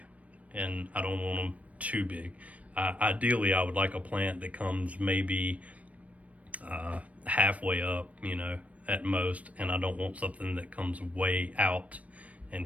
and I don't want them too big. Ideally, I would like a plant that comes maybe halfway up, at most, and I don't want something that comes way out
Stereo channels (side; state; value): left; late; 0.067 ms